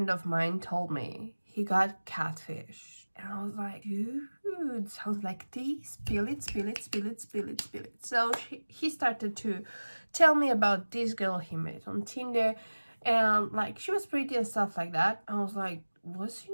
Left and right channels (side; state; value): both; inverted; correlation -1.00